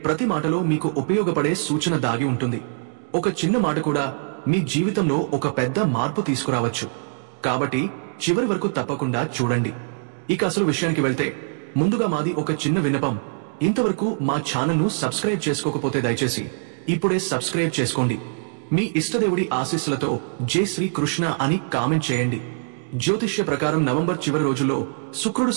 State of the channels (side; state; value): left; silent; digital silence